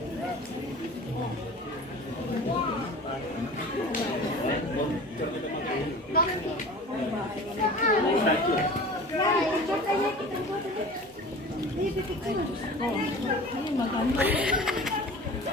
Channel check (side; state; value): both; normal; correlation 0.39